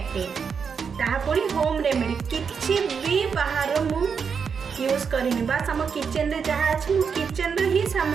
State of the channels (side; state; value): left; quieter; 6.2 dB